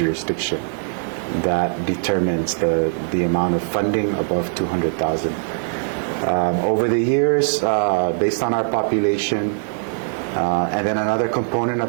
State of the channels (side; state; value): left; silent; 65 dB below the other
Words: That determines the amount of funding above $200,000. Over the years, based on our population, and then another component